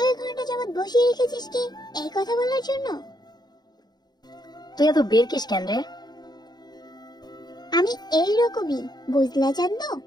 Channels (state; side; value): late; right; 0.20 ms